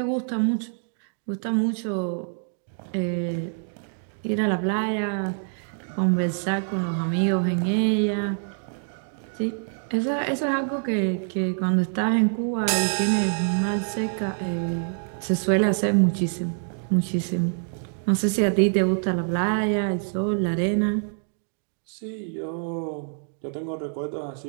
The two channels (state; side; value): silent; left; digital silence